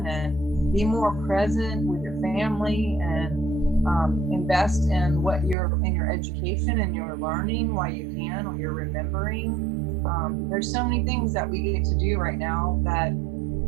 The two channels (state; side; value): drops out; left; at 5.6 s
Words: and be more present with your family and invest in your education and your learning while you can, or you're remembering. There's so many things that we get to do right now that